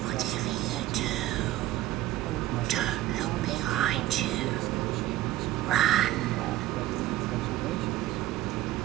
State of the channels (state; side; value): quieter; left; 15.1 dB